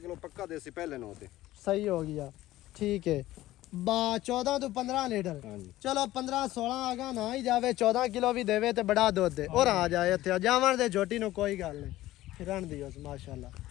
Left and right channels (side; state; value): right; quieter; 15.8 dB